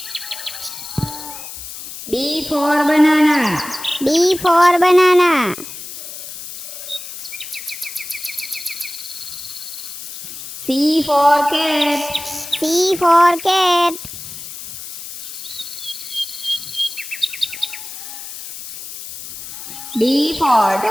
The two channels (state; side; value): noise; left; hiss, 10 dB below the sound